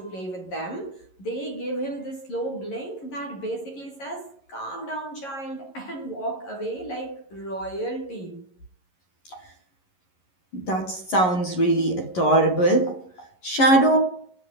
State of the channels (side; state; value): right; late; 11 ms